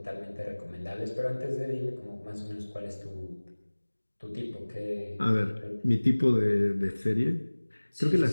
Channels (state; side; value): inverted; both; correlation -1.00